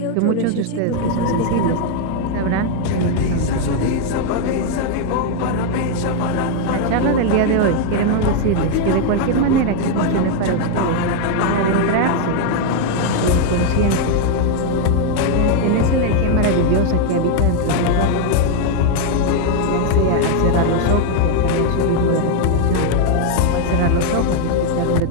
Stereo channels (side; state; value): both; different; correlation 0.00